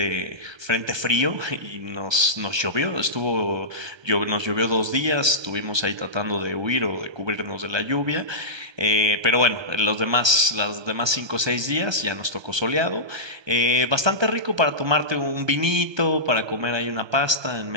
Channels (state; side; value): late; left; 1.3 ms